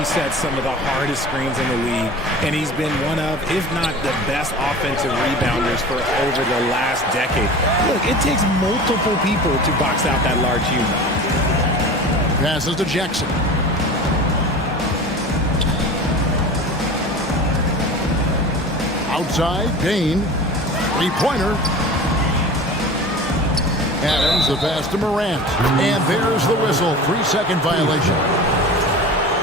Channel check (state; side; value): normal; both; correlation 0.36